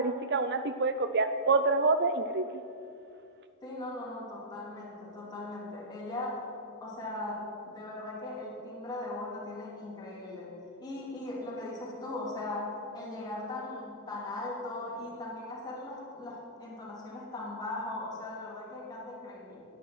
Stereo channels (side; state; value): both; normal; correlation -0.20